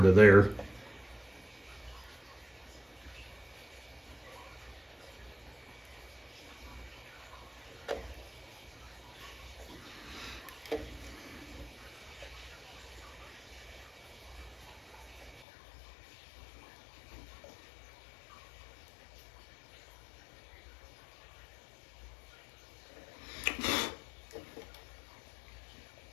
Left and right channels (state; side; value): drops out; right; at 15.5 s